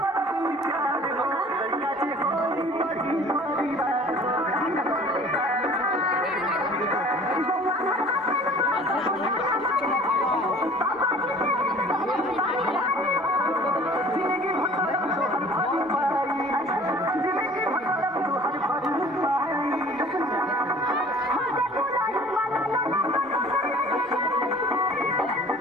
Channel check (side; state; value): both; normal; correlation 0.48